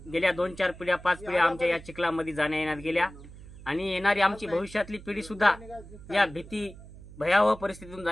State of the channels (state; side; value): noise; right; hum, 17 dB below the sound